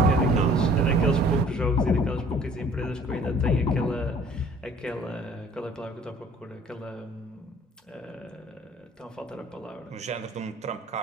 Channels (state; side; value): normal; both; correlation 0.53